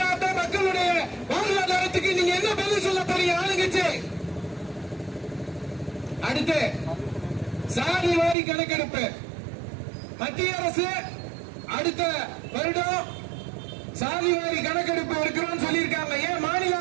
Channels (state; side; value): drops out; left; at 8.3 s